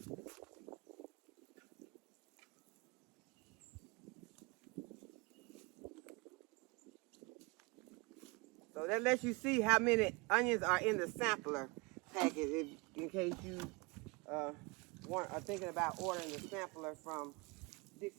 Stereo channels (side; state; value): left; quieter; 27.2 dB